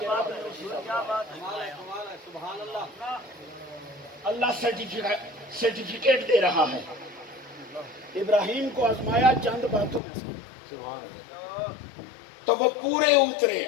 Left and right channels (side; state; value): right; drops out; at 10.0 s